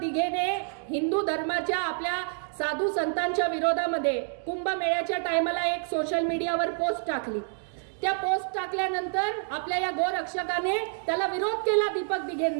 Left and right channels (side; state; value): left; silent; digital silence